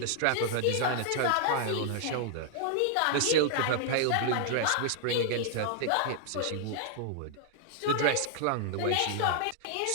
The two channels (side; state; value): both; different; correlation 0.00